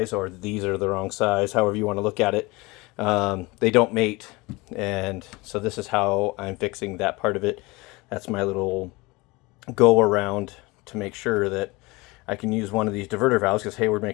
or these are the wrong size, however you want to look at it, they don't mate. And so this is how I'm fixing that part of it. That's my little go around to make sure that I can use one of these diverter valves, because Hayward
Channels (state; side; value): quieter; right; 23.7 dB